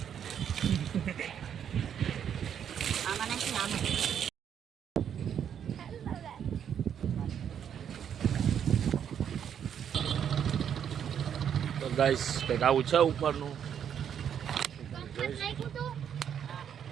તો ગાઈસ કંઈક આવું છે ઉપરનું.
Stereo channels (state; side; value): quieter; left; 8.7 dB